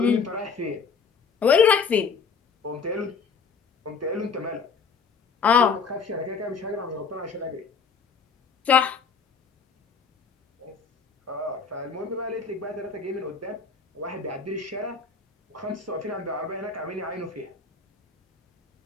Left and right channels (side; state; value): right; quieter; 5.5 dB